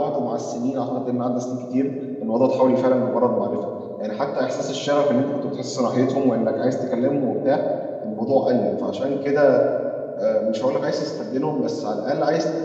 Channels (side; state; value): both; identical; correlation 1.00